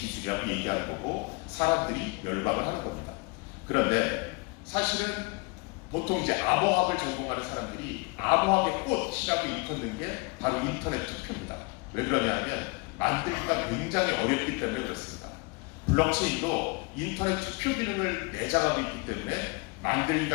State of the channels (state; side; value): quieter; right; 28.5 dB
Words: 얘기하는 거고 사람들이 열광을 하는 겁니다. 그런데 사실은 보통 이제 암호학을 전공하는 사람들이 암호학의 꽃이라고 일컫는 게 바로 인터넷 투표입니다. 왜 그러냐면 만들기가 굉장히 어렵기 때문에 그렇습니다. 블록체인도 인터넷 투표 기능을 내장하고 있기 때문에